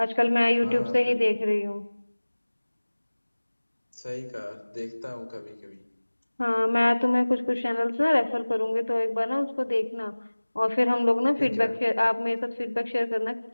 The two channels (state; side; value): inverted; both; correlation -1.00